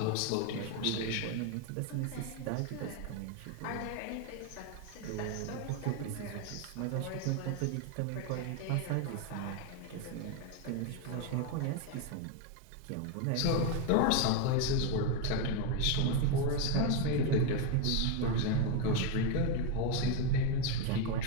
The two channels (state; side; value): different; both; correlation 0.02